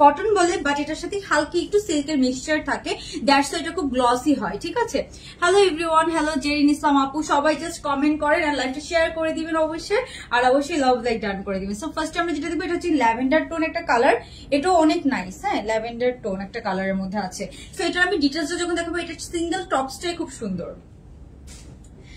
কটন বলে, বাট এটার সাথে হালকা একটু সিল্কের মিক্সচার থাকে, দ্যাটস এটা খুব গ্লসি হয়, ঠিক আছে। হ্যালো এভরিওয়ান, হ্যালো জেরিন ইসলাম আপু, সবাই জাস্ট কমেন্ট করেন আর লাইভটা শেয়ার করে দিবেন অবশ্যই, আর অবশ্যই লাভ লাইক ডান করে দিবেন। সো ফার্স্টে আমরা যেটা দেখবো, এটা হচ্ছে ল্যাভেন্ডার টোন একটা কালার, এটাও অনেক নাইস, হ্যাঁ, ল্যাভেন্ডার টোন একটা কালারের মধ্যে আছে। সো এটা আমি ডিটেইলসটা যখন দেখাবো, এটা সিঙ্গেল টপসটাই খুব সুন্দর,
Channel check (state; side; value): identical; both; correlation 1.00